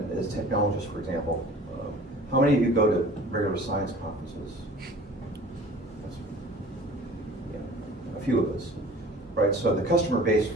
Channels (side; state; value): both; normal; correlation 0.45